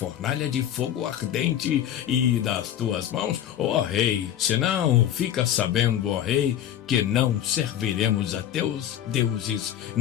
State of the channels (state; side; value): quieter; right; 10.8 dB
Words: de fogo ardente e das tuas mãos, ó rei. Senão, fica sabendo, ó rei, que não serviremos a teus deuses,